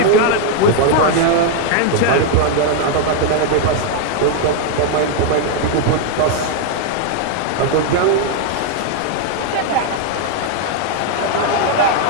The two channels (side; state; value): both; different; correlation 0.00